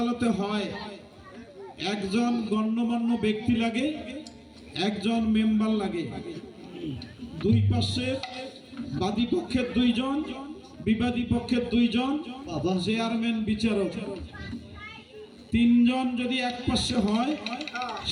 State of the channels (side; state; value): both; identical; correlation 1.00